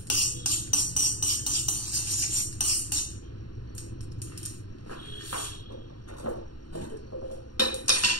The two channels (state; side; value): late; right; 0.71 ms